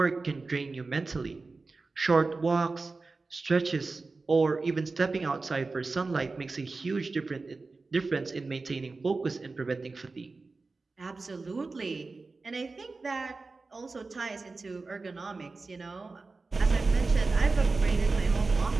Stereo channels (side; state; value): left; quieter; 3.8 dB